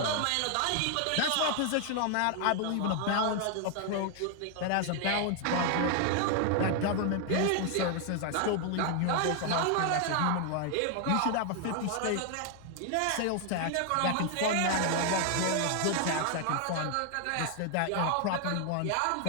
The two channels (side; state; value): both; different; correlation 0.00